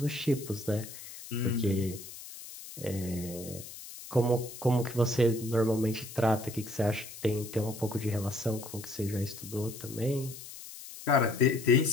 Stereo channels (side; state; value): left; noise; hiss, 14 dB below the sound